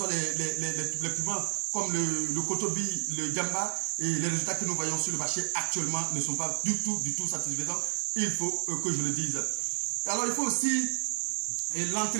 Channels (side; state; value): left; silent; digital silence